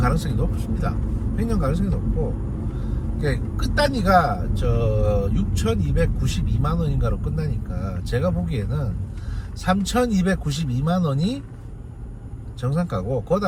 높습니다. 횡령 가능성이 높고 끝 단위가 저 6,292만 원인가로 끝나니까 제가 보기에는 3,292만 원이 정상가고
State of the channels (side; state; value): both; identical; correlation 1.00